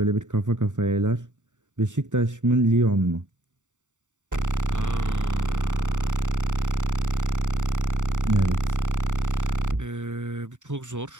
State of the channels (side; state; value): left; late; 0.85 ms